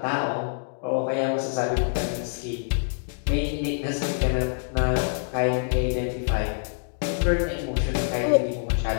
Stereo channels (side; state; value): right; silent; digital silence